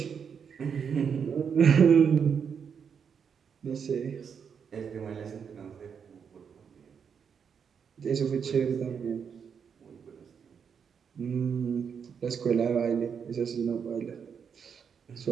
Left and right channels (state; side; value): quieter; left; 6.9 dB